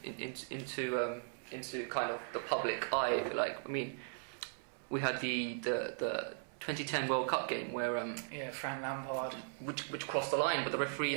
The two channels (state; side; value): silent; left; 52 dB below the other